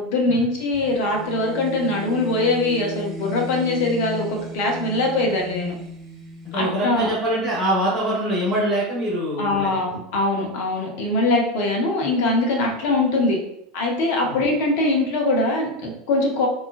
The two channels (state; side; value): normal; both; correlation 0.13